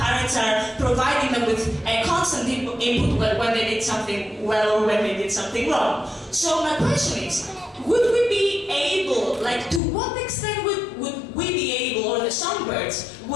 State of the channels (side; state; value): right; drops out; at 9.8 s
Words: are providing them with a constant input when they did something well or when they did something wrong. So my question is, would we be able, to what extent would we be able, or the songbirds